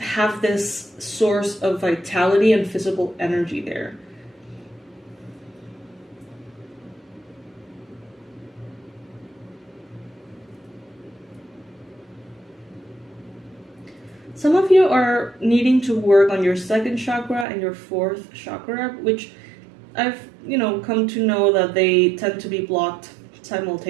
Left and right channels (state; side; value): drops out; left; at 17.4 s